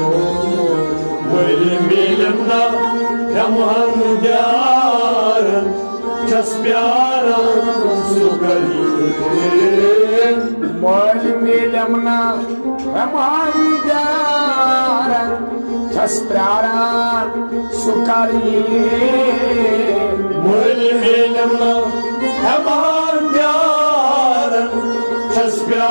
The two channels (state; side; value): inverted; both; correlation -1.00